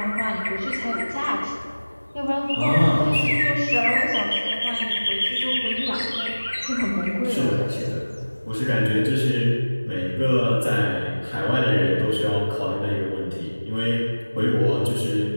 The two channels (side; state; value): both; inverted; correlation -1.00